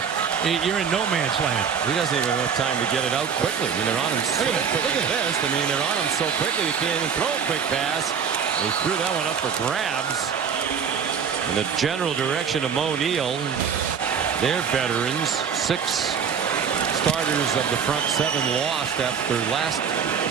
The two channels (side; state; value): left; quieter; 6.9 dB